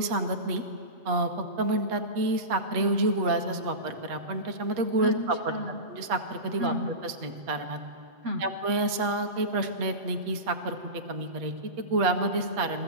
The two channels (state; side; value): late; left; 8.4 ms